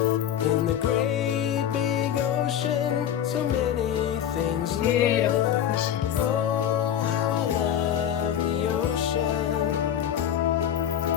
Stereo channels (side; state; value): right; quieter; 10.0 dB